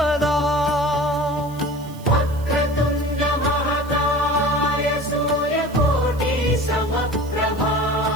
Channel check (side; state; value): right; noise; hiss, 22 dB below the sound